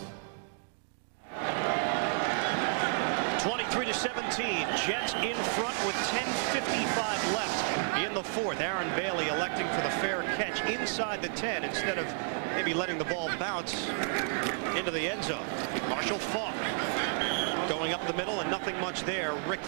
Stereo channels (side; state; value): left; silent; 57 dB below the other